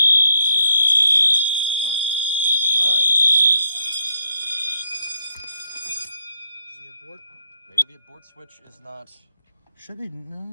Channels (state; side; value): inverted; both; correlation -0.74